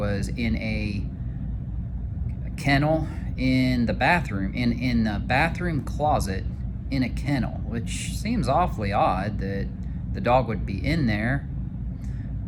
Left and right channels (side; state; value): both; identical; correlation 1.00